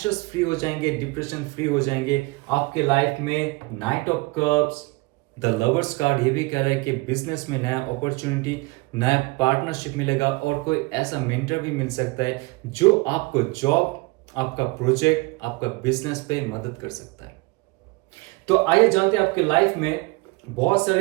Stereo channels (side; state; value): left; quieter; 24.4 dB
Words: फ्री हो जाएंगे, डिप्रेशन फ्री हो जाएंगे, आपके लाइफ में night of cups, the lovers card ये भी कह रहा है कि बिजनेस में नया अपॉर्चुनिटी, नया पार्टनरशिप मिलेगा, और कोई ऐसा मेंटर भी मिल सकता है जो आपको जॉब, आपका प्रोजेक्ट, आपका बिजनेस पे मदद कर सकता है। तो आइए जानते हैं, आपके लाइफ में बहुत